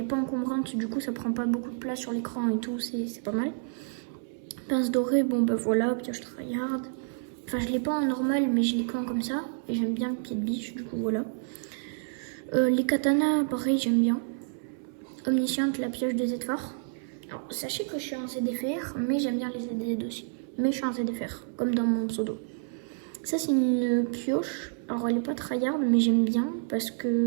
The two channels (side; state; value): left; silent; 59 dB below the other